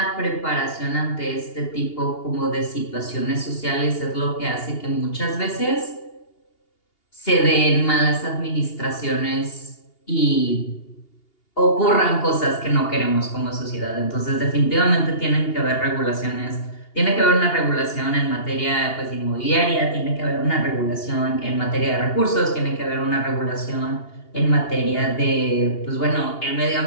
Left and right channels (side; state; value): right; late; 2.8 ms